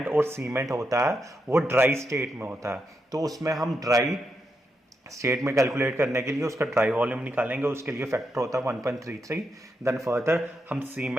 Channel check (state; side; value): normal; both; correlation 0.84